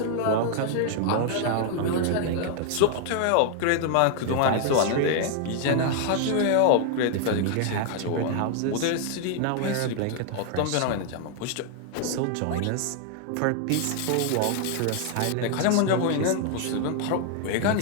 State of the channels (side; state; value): both; different; correlation 0.00